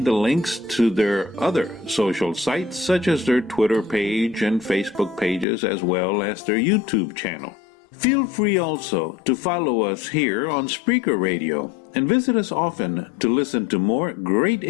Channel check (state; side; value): drops out; right; at 5.5 s